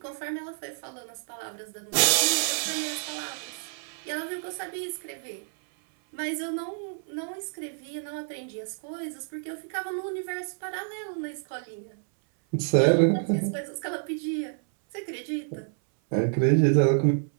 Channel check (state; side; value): silent; left; 59 dB below the other